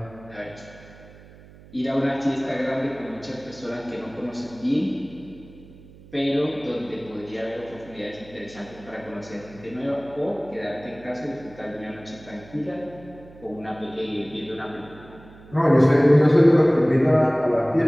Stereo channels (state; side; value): noise; right; hum, 21 dB below the sound